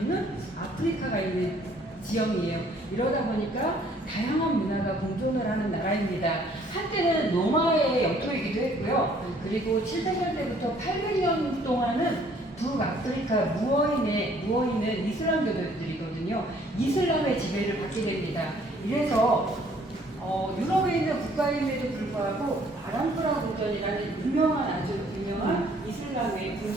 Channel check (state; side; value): normal; both; correlation 0.60